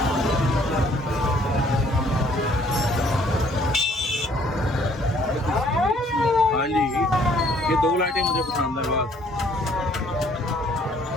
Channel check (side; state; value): both; normal; correlation 0.61